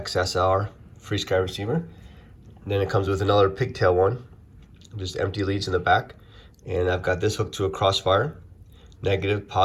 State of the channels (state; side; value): identical; both; correlation 1.00